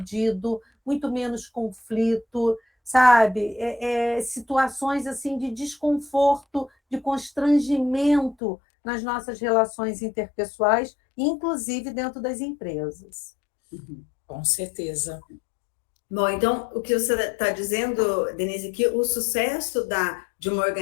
muito menos conflito, sabe? Situações assim de desconforto, de constrangimento nas nossas relações interpessoais, inclusive dentro das empresas. Com certeza. Bom, então, o que você está dizendo, Denise, que o sucesso de uma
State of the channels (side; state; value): right; drops out; at 8.3 s